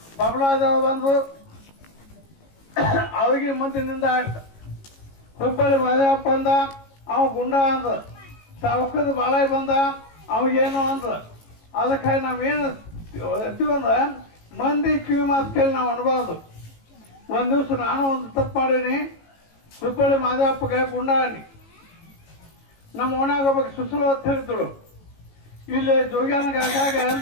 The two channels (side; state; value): right; late; 18 ms